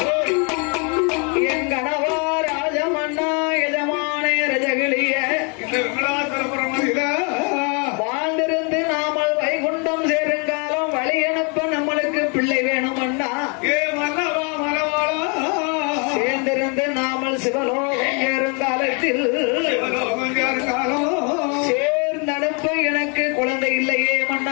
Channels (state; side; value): quieter; right; 35.3 dB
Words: வாழ்ந்திருந்து நாமல் வைகுண்டம் சேருங்காலம் வழி அனுப்ப நம்மளுக்கு பிள்ளை வேணுமண்ணா, சேர்ந்திருந்து நாமல் சிவலோகம் சேருங்காலத்தில் சேர்ந்தனுப்ப எனக்கு குழந்தை இல்லையே